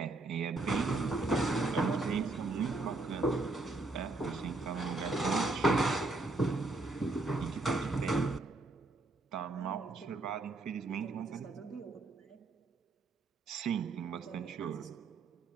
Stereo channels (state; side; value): quieter; left; 3.3 dB